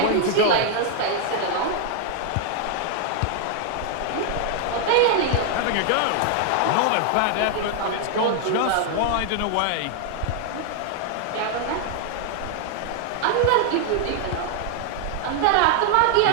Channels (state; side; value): different; both; correlation 0.00